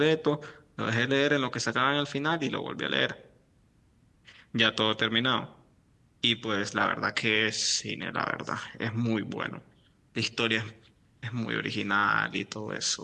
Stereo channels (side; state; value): both; identical; correlation 1.00